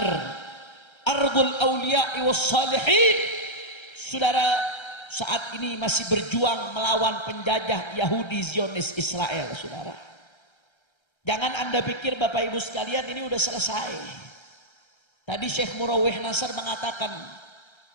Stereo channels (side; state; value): right; late; 1.3 ms